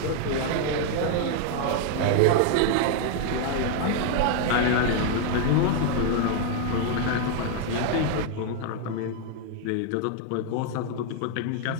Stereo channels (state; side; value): different; both; correlation 0.00